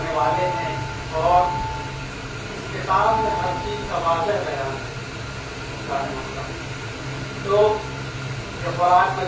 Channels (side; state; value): both; identical; correlation 1.00